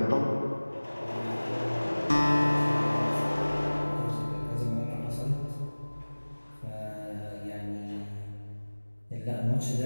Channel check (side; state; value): both; inverted; correlation -1.00